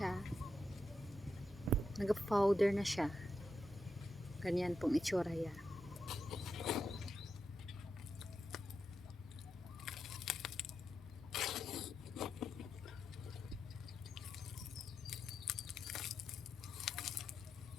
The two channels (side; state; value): both; normal; correlation 0.86